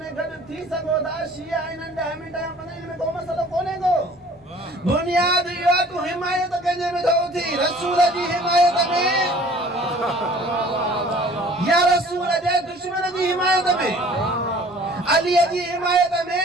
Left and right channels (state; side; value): normal; both; correlation 0.50